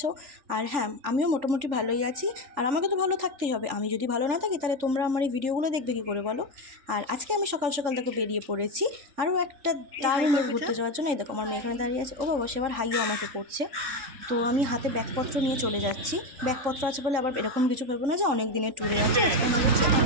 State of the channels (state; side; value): late; left; 3.5 ms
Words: আর হ্যাঁ, আমিও মোটামুটি ভালোই আছি। আর আমাকে তো ভালো থাকতেই হবে। আমি যদি ভালো না থাকি তাহলে তোমরা আমার এই ভিডিওগুলো দেখবে কী করে বলো? আর আজকে আমি সকাল সকাল দেখো বেরিয়ে পড়েছি আরও একটা দারুণ ঘুরতে যাওয়ার জন্য। এই দেখো আমার মেয়ে এখানে দাঁড়িয়ে আছে। ও বাবা, সে আবার হাইও আমাকে করছে। তো আমি হাতে ব্যাগপত্র নিয়ে চলে যাচ্ছি। ব্যাগপত্র আছে বলে আবার এরকম কিছু ভেবো না যে অনেক দিনের ট্যুরে আছে। আজকে আমরা যাচ্ছি 8